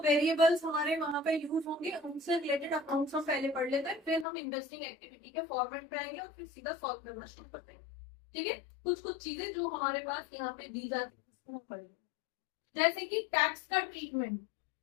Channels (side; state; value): right; drops out; at 4.2 s